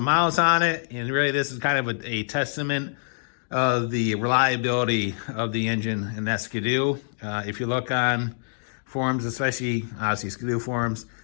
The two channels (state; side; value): silent; right; 61 dB below the other